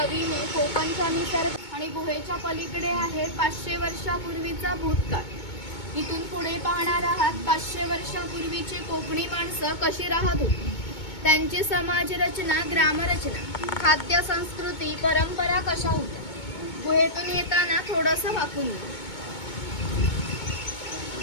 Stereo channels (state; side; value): late; right; 2.2 ms